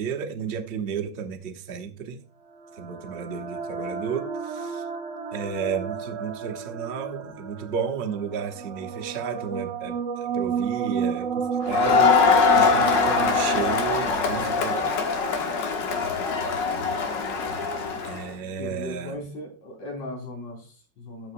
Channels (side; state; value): right; late; 5.5 ms